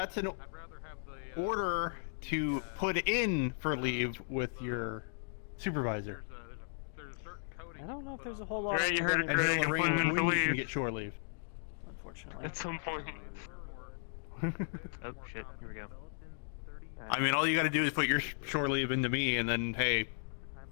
an order to put in for leave with your supervisor. I don't know if there's a whole lot of And he'll arrange when you can get shore leave. Unfortunately. At some point. Oh, shit. Here we go. I mean, all you gotta do is put your shore leave into me, and then, hey,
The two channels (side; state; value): right; silent; digital silence